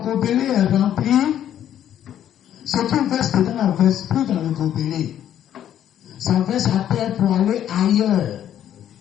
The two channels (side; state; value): right; quieter; 10.7 dB